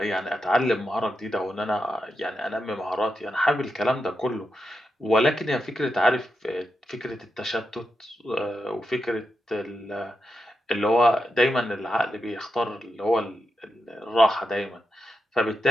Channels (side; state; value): both; normal; correlation 0.87